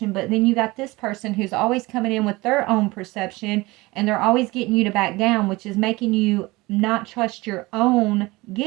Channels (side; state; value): left; quieter; 21.8 dB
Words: But then you got this person who's always coming in with their own perception, and they're always getting you to back down, which is making you not trust your own